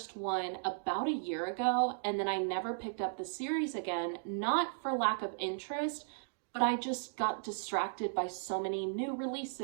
one about a year ago and then I never picked up the series again, not for lack of interest, but I just got distracted by so many new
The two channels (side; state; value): left; silent; digital silence